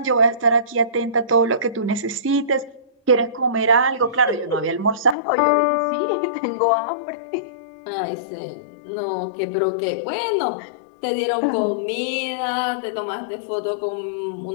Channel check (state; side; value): drops out; right; at 5.2 s